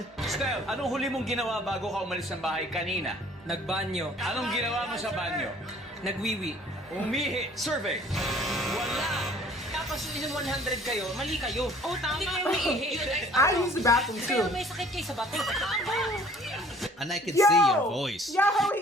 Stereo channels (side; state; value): both; normal; correlation 0.54